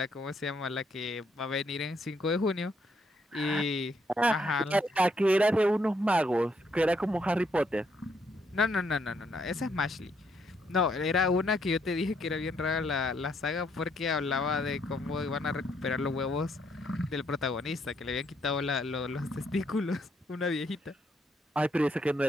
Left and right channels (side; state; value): both; normal; correlation 0.73